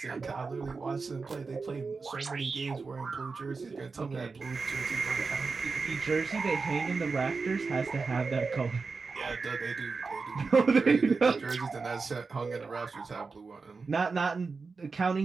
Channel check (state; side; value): quieter; left; 4.5 dB